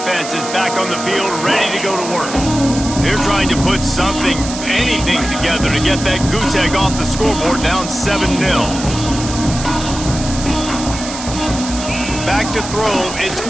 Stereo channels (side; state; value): right; noise; hiss, 9 dB below the sound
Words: is back on the field, ready to go to work. They're trying to put anything together to get that goose egg off the scoreboard down 7-0. Back to throw, it's